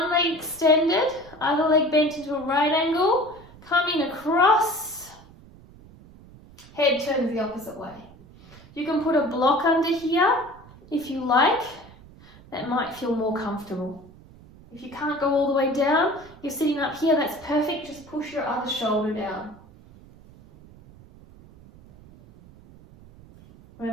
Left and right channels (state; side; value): noise; right; rumble, 22 dB below the sound